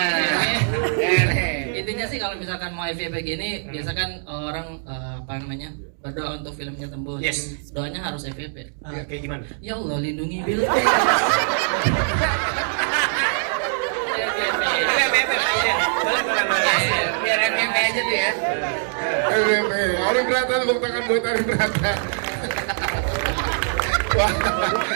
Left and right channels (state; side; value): silent; left; digital silence